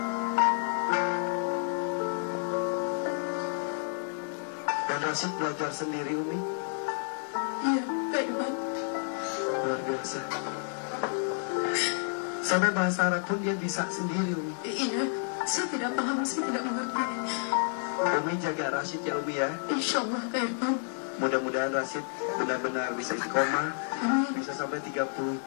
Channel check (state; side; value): silent; right; 58 dB below the other